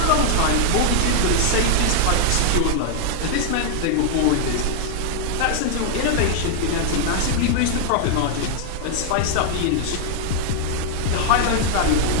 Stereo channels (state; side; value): different; both; correlation 0.00